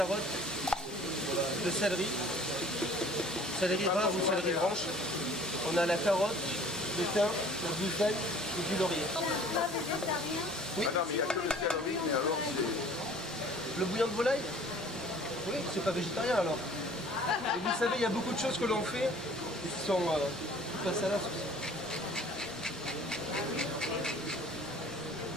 le céleri rare ou céleri branche. On a la carotte, le thym, le buffet et du laurier. Oui. Ah non, mais il n'y a que le céleri, mais alors c'est... Le bouillon de volaille? Oui, c'est pas végétarien alors. Et vous savez, il y a beaucoup de choses que l'on fait qui sont pas salaces aussi.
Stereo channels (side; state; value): both; normal; correlation 0.50